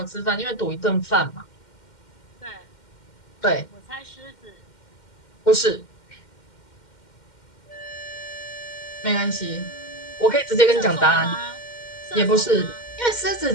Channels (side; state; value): right; late; 2.1 ms